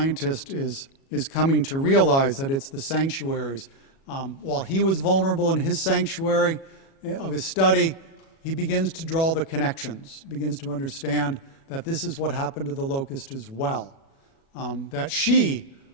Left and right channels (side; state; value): right; late; 37 ms